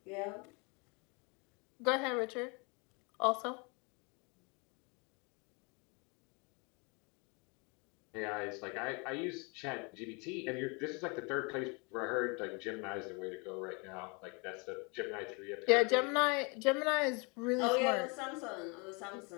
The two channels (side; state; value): right; quieter; 31.1 dB